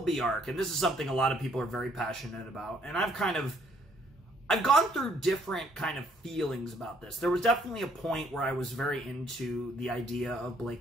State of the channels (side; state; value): both; normal; correlation 0.66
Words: arc, and this is something a lot of people are very passionate about. And I've gone through different kind of feelings about this. There was definitely a point where I was very into the idea of